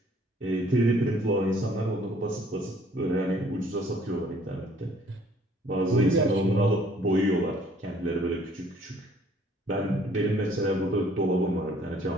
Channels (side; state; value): both; normal; correlation 0.59